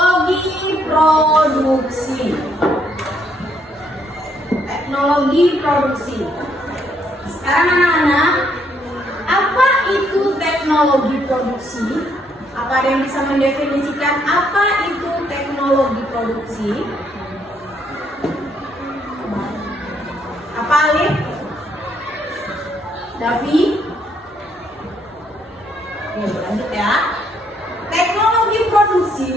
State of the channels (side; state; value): both; normal; correlation 0.71